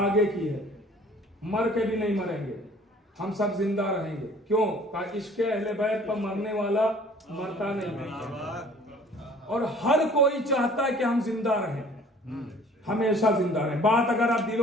की है। मर के भी नहीं मरेंगे, हम सब जिंदा रहेंगे। क्यों? इश्क़ अहले बैत पर मरने वाला मरता नहीं है। और हर कोई चाहता है कि हम जिंदा रहें, हमेशा जिंदा रहें। बात अगर आप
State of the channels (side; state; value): both; normal; correlation 0.52